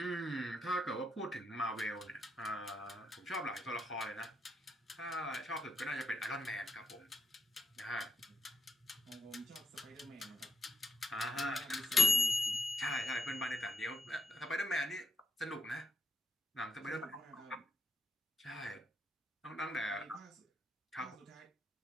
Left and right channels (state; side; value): normal; both; correlation 0.81